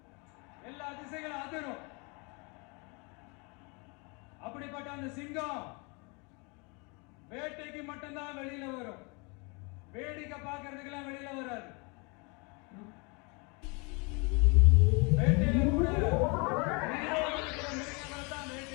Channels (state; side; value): quieter; right; 31.1 dB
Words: எல்லா திசைகளும் அதிரும். அப்படிப்பட்ட அந்த சிங்கம் வேட்டைக்கு மட்டும்தான் வெளியில வரும், வேடிக்கை பார்க்கறதுக்கெல்லாம் வெளியில வராது. வேட்டையில கூட மிருகங்களை தான்